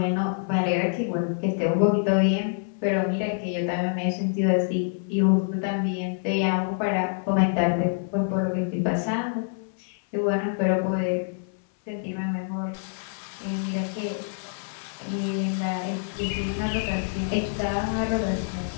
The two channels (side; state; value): right; silent; 61 dB below the other